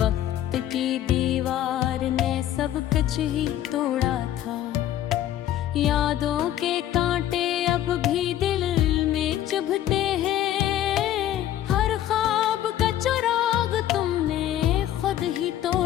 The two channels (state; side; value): quieter; right; 12.1 dB